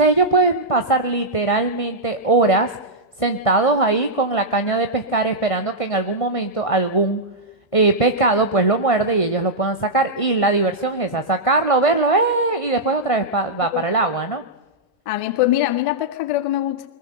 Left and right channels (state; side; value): late; right; 1.5 ms